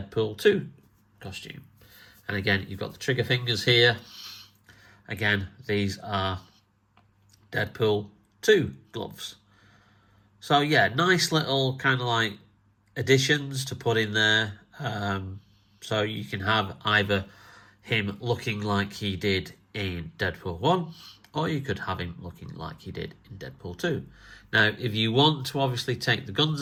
2 costume. And again, you've got the trigger fingers here. Again, these are Deadpool 2 gloves. So yeah, nice little kind of like additions to put in there. So you can have either him looking like he did in Deadpool 1, or you could have him looking like he did in Deadpool 2. Now, if you want to obviously take the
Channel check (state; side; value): identical; both; correlation 1.00